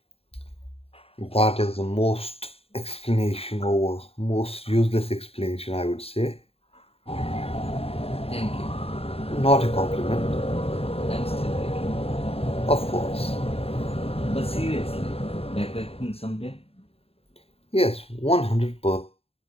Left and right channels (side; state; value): right; late; 0.28 ms